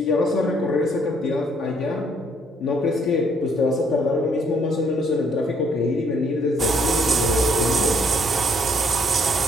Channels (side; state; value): both; normal; correlation 0.67